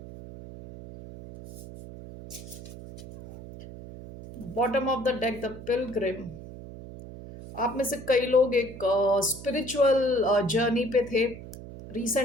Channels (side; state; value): right; noise; hum, 14 dB below the sound